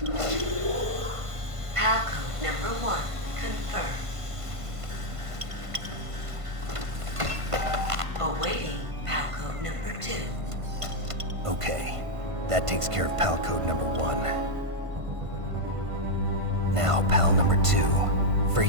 PAL code number 1 confirmed. Awaiting PAL code number 2. Okay, that takes care of PAL code number 1. Now, PAL number 2,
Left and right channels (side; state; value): left; late; 1.5 ms